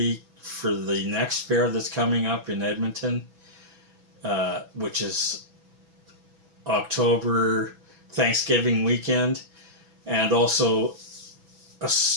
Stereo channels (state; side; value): late; left; 6.1 ms